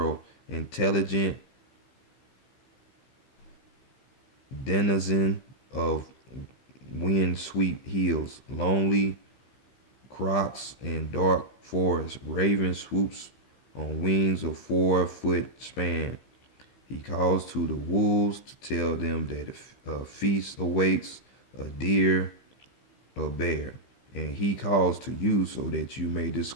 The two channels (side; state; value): right; late; 15 ms